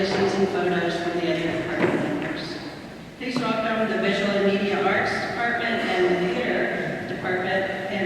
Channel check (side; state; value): both; identical; correlation 1.00